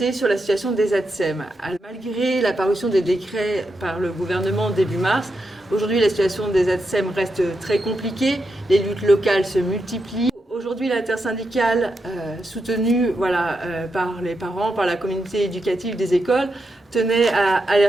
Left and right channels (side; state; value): both; normal; correlation 0.85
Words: sur la situation des ATSEM. Malgré la parution des décrets par le gouvernement début mars, aujourd'hui la situation des ATSEM reste très compliquée, les luttes locales se multiplient. Aujourd'hui, l'intersyndicale, soutenue par les parents, par la communauté éducative des écoles, tenait à